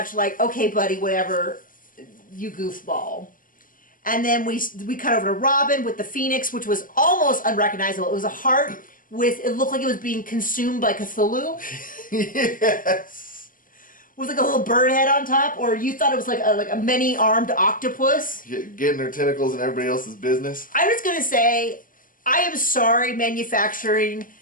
like, okay, buddy, whatever, you goofball. And then we cut over to Robin with the Phoenix, which was almost unrecognizable. It was a heart it looked like it was being consumed by Cthulhu. Yes. With like a little bird head on top, or you thought it was like a many-armed octopus. Getting her tentacles in everybody else's business. I was gonna say, I am sorry, manufacturing,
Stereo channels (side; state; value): right; late; 0.40 ms